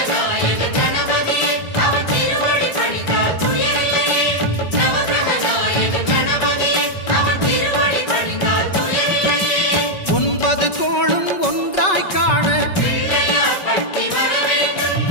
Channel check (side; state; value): right; late; 5.3 ms